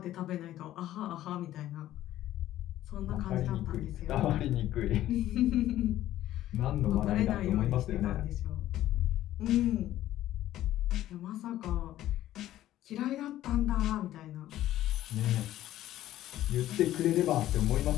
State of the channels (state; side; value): quieter; right; 13.6 dB